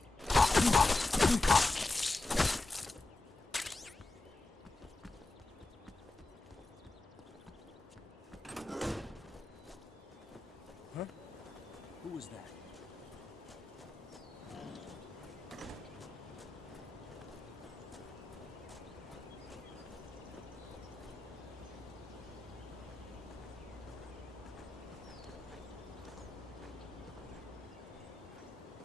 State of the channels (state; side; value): quieter; right; 3.0 dB